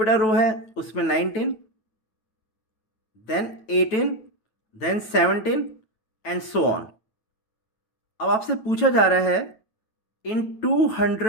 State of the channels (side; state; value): right; late; 9.2 ms